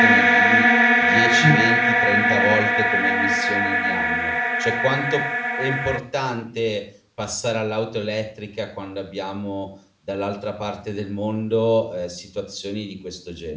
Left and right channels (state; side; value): identical; both; correlation 1.00